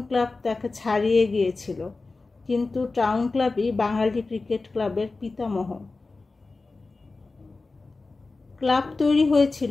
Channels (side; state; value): right; quieter; 3.7 dB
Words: ক্লাব তাকে ছাড়িয়ে গিয়েছিল, কিন্তু টাউন ক্লাবই বাঙালি ক্রিকেট ক্লাবের পিতামহ। ক্লাব তৈরি